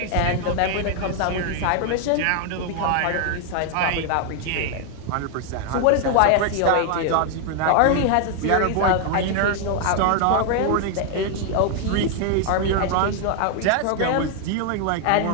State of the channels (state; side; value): different; both; correlation 0.00